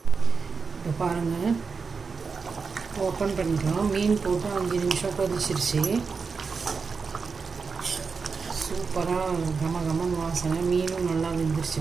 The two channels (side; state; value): left; quieter; 5.0 dB